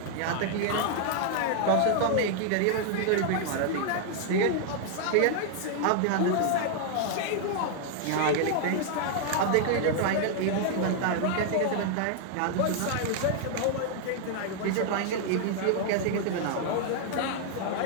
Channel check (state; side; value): different; both; correlation 0.00